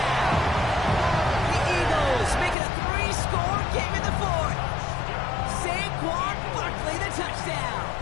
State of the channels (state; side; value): drops out; right; at 2.6 s